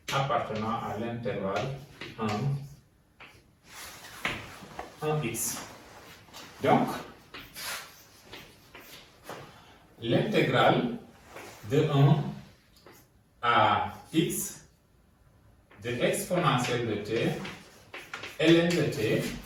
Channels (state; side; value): identical; both; correlation 1.00